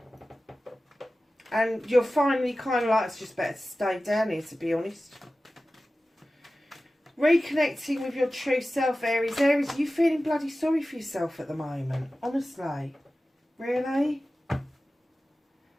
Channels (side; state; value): both; normal; correlation 0.95